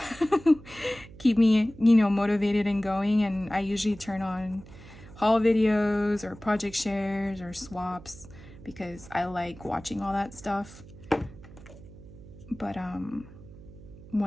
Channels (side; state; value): right; noise; hum, 18 dB below the sound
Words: keep me, you know, motivated and going, and I usually turn on haul videos or project shares or swaps because I like watching all that stuff. But